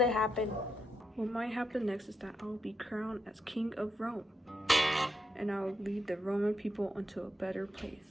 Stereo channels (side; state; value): both; normal; correlation 0.82